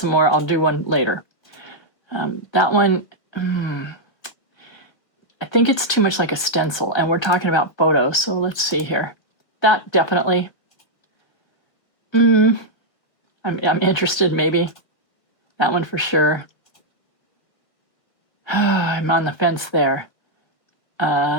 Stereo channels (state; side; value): late; right; 1.7 ms